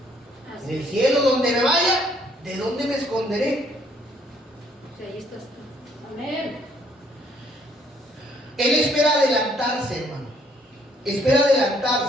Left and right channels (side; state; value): both; normal; correlation 0.65